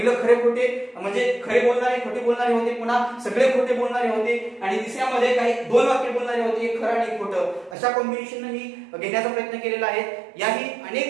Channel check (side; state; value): left; drops out; at 7.8 s